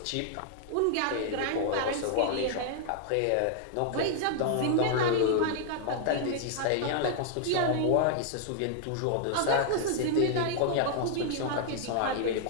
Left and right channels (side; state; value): both; different; correlation 0.00